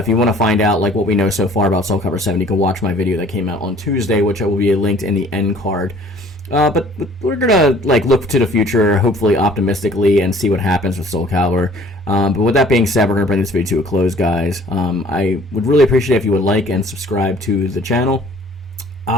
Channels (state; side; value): normal; both; correlation 0.53